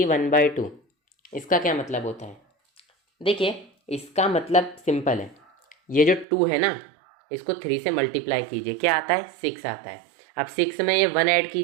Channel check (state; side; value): drops out; left; at 6.2 s